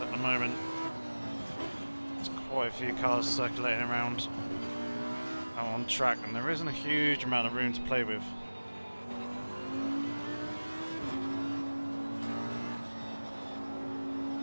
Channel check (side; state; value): both; inverted; correlation -1.00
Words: At the moment, there's quite a few cars circulating around out on track, and there isn't a huge amount of room to play with.